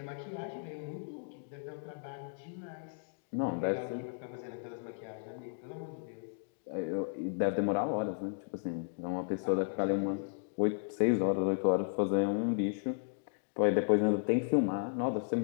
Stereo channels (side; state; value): right; silent; digital silence